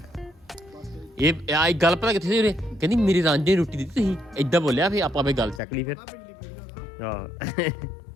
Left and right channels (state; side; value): drops out; right; at 5.6 s